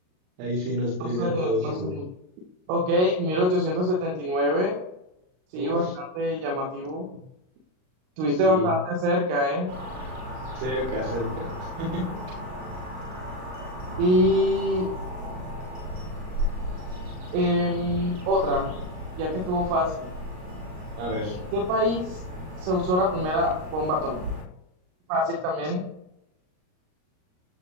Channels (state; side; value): late; left; 38 ms